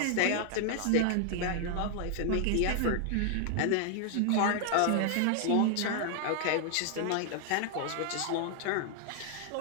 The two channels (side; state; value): both; different; correlation 0.00